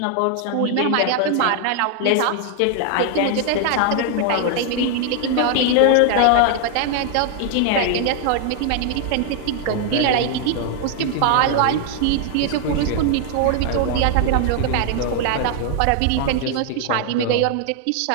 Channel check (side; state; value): both; different; correlation 0.00